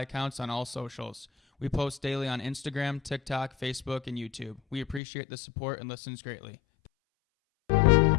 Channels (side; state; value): right; drops out; at 5.0 s